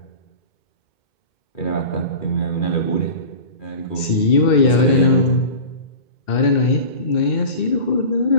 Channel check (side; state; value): right; late; 2.2 ms